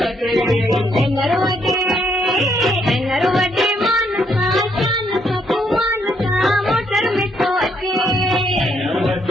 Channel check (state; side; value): normal; both; correlation 0.72